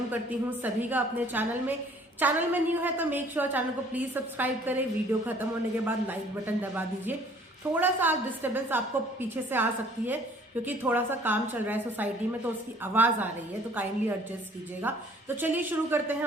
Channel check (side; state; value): both; normal; correlation 0.56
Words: करती हूं सभी का अपने चैनल में न्यू है तो मेक श्योर चैनल को प्लीज सब्सक्राइब करें। वीडियो खत्म होने के बाद लाइक बटन दबा दीजिए। थोड़ा सा डिस्टर्बेंस आपको पीछे से आ सकती है क्योंकि थोड़ा सा काम चल रहा है सोसाइटी में, तो उसकी आवाज आ रही है, तो काइंडली एडजस्ट कीजिएगा। तो चलिए शुरू करते हैं